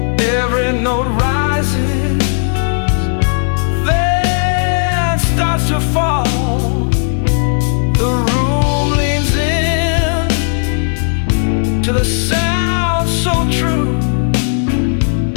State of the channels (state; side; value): silent; right; digital silence